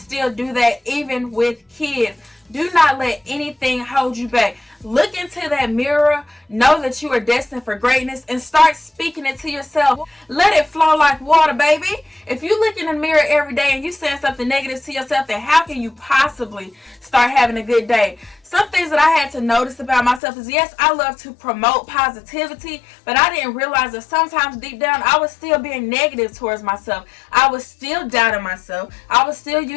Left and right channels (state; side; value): drops out; right; at 20.2 s